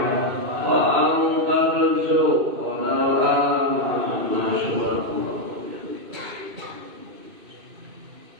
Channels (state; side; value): late; left; 2.6 ms